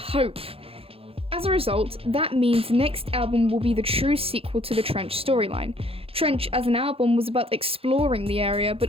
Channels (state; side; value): late; left; 0.27 ms